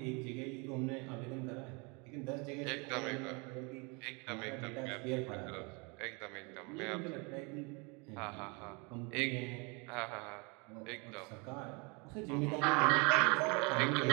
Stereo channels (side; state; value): left; quieter; 30.4 dB